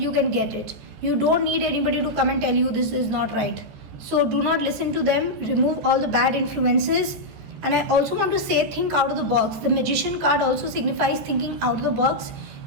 can get it. You don't need anybody to come and tell you this is not right. So do not listen to them. Remove all the bad influences. And I also want to say, think out of the box. The Magician card also signifies thinking out of the box.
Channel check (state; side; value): late; left; 14 ms